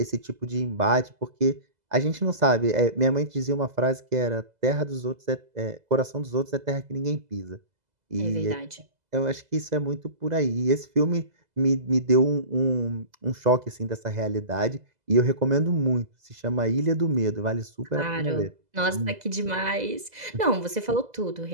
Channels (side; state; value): left; late; 2.0 ms